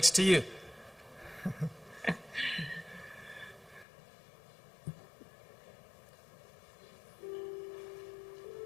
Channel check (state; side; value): drops out; right; at 3.9 s